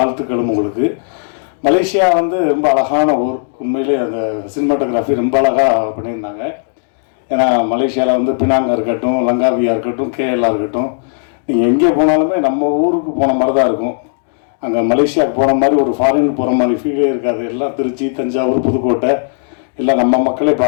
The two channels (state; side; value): silent; right; digital silence